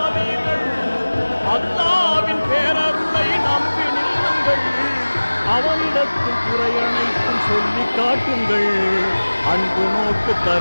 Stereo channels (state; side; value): inverted; both; correlation -1.00